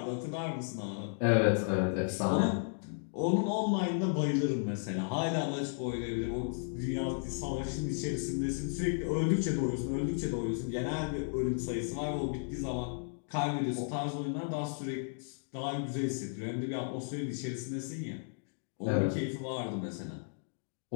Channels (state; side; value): silent; right; digital silence